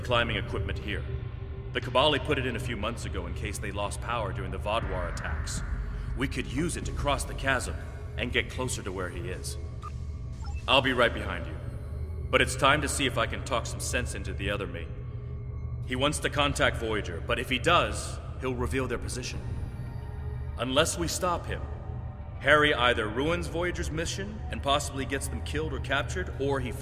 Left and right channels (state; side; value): identical; both; correlation 1.00